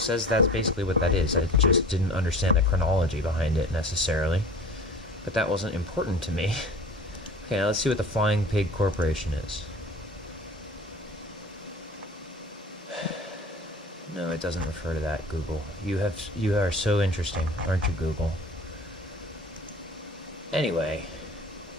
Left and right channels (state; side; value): normal; both; correlation 0.42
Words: that's basically what that is. I just didn't understand the chronology behind it necessarily, but that wasn't important to me. Okay, now let's see what the Flying Pig Corporation is. No, it doesn't refer to that, Google. You are so interesting, aren't you, Google? Anyway,